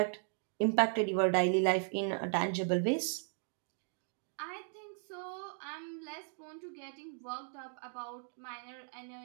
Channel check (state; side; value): silent; left; 53 dB below the other